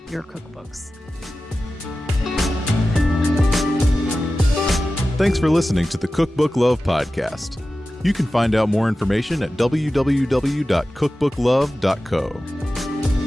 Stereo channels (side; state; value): both; normal; correlation 0.94